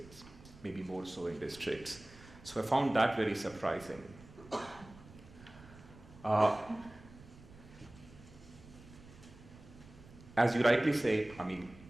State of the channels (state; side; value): noise; right; rumble, 20 dB below the sound